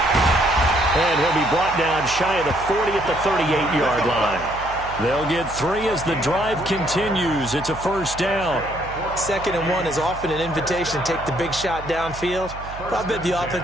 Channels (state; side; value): noise; right; hum, 13 dB below the sound